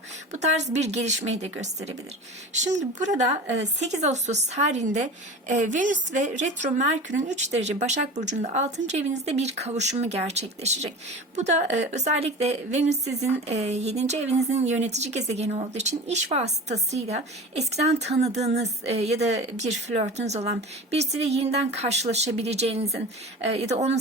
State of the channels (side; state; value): both; normal; correlation 0.33